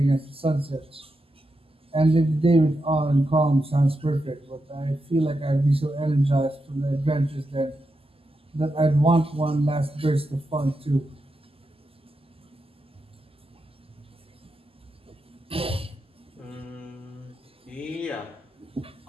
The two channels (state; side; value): normal; both; correlation 0.87